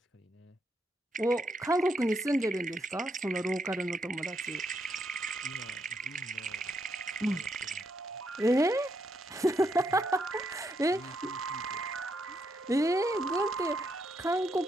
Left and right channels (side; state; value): both; normal; correlation 0.78